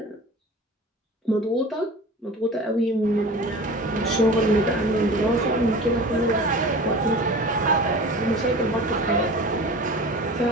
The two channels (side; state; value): both; normal; correlation 0.37